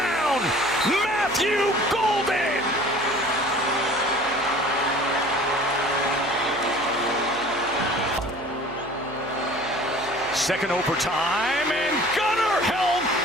Matthew Golden. Second overtime, and Gunnar Helm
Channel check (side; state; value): left; noise; hum, 24 dB below the sound